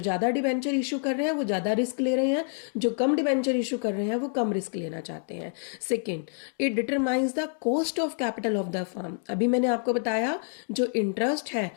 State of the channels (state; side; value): silent; right; 57 dB below the other